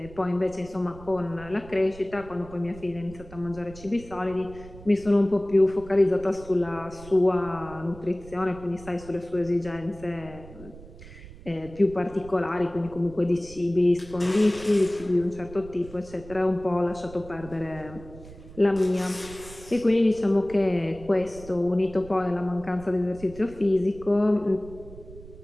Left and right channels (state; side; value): noise; right; rumble, 17 dB below the sound